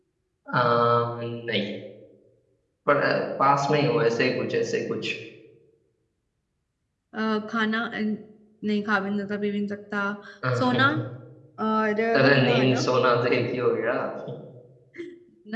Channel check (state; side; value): identical; both; correlation 1.00